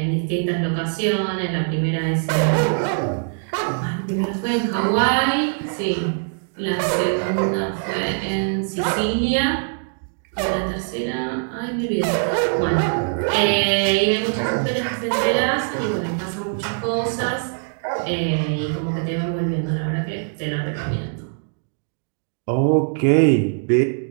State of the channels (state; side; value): silent; left; digital silence